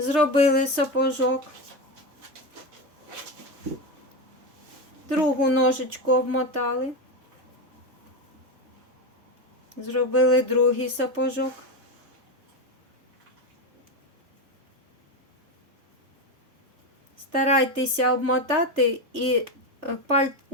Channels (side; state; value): left; late; 3.3 ms